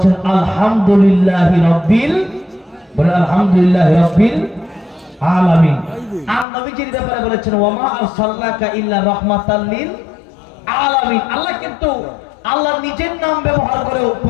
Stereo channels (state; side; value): drops out; right; at 6.5 s